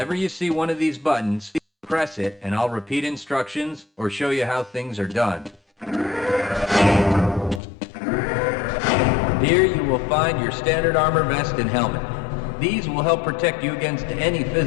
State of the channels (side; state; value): right; drops out; at 7.6 s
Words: you see one of these buttons, press it and I'll repeat instructions or show you how things are done. Here you will find your standard armor vest and helmet. These will help protect you against any